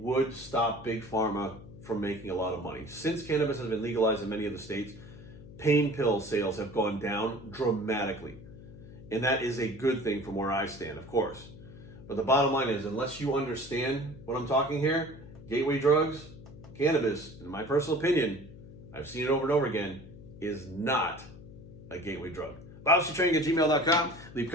stop Big Pharma from making a lot of money. Since cannabis has been legalized in many of the states, pain pill sales have gone down dramatically. And that is a good thing from where I stand, of course. But the bottom line is, unless you understand what I'm talking here, gateway drugs, cannabis, in my personal opinion, I've seen it over and over again, is not a gateway drug. BobStraining@gmail.com. Leave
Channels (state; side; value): noise; left; hum, 16 dB below the sound